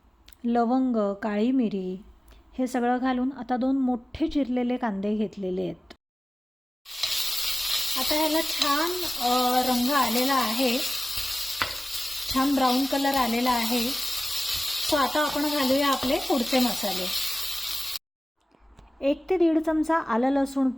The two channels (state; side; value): normal; both; correlation 0.97